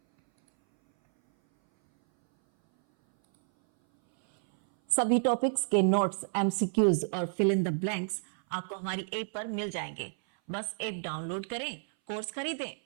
सभी टॉपिक्स के नोट्स, एमसीक्यूज और फिल इन द ब्लैंक्स आपको हमारी ऐप पर मिल जाएंगे। बस ऐप डाउनलोड करें, कोर्स खरीदें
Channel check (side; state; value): left; silent; 58 dB below the other